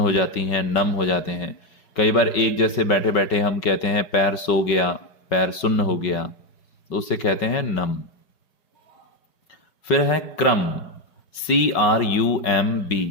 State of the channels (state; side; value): late; right; 5.4 ms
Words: जाती हैं, नम हो जाते हैं। कई बार एक जैसे बैठे बैठे हम कहते हैं पैर सो गया, पैर सुन्न हो गया, तो उसे कहते हैं नम। फिर है क्रम, CRUMB,